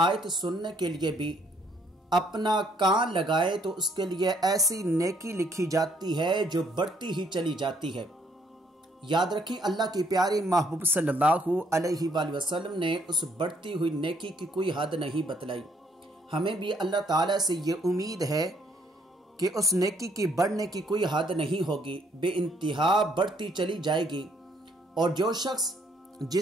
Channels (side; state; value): both; normal; correlation 0.67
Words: सुनने के लिए भी अपना कान लगाए तो उसके लिए ऐसी नेकी लिखी जाती है जो बढ़ती ही चली जाती है। याद रखें, अल्लाह के प्यारे महबूब सल्लल्लाहु अलैहि वसल्लम ने उस बढ़ती हुई नेकी की कोई हद नहीं बतलाई। हमें भी अल्लाह ताला से ये उम्मीद है कि उस नेकी की बढ़ने की कोई हद नहीं होगी, बेइंतहा बढ़ती चली जाएगी। और जो शख्स